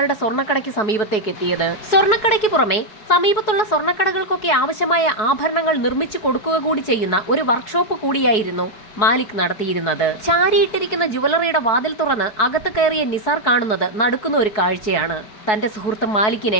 സ്വർണ്ണക്കടയ്ക്ക് സമീപത്തേക്ക് എത്തിയത്. സ്വർണ്ണക്കടയ്ക്ക് പുറമെ സമീപത്തുള്ള സ്വർണ്ണക്കടകൾക്കൊക്കെ ആവശ്യമായ ആഭരണങ്ങൾ നിർമ്മിച്ചു കൊടുക്കുക കൂടി ചെയ്യുന്ന ഒരു വർക്ക്ഷോപ്പ് കൂടിയായിരുന്നു മാലിക് നടത്തിയിരുന്നത്. ചാരിയിട്ടിരിക്കുന്ന ജുവലറിയുടെ വാതിൽ തുറന്ന് അകത്ത് കയറിയ നിസാർ കാണുന്നത് നടുക്കുന്ന ഒരു കാഴ്ചയാണ്. തന്റെ സുഹൃത്ത് മാലിക്കിനെ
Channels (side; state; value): right; late; 4.7 ms